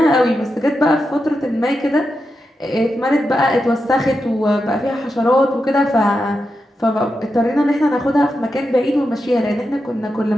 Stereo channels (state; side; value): normal; both; correlation 0.88